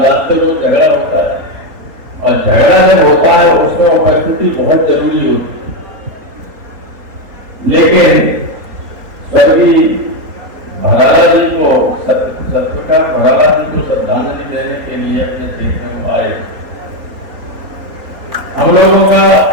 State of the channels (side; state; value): left; late; 3.8 ms